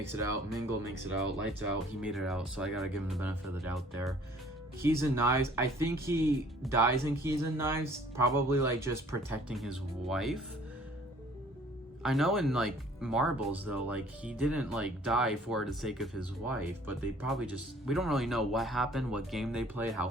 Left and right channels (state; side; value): normal; both; correlation 0.55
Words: it out, Mingle makes it out, Lights Out, he made it out, so I gotta give him the benefit of the doubt there. Keys and Knives, I think he dies in Keys and Knives, probably like just protecting his wife. I know in like Marbles though, like he didn't like die for the sake of his wife, but they probably just, we don't really know what happened, what game they played, how